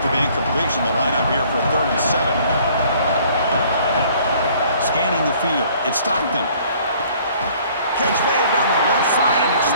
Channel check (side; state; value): both; inverted; correlation -0.57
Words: the incompletion, the lineup here for 3rd and 7. Scanning the field. It's Stockton. Catch made down the left side, an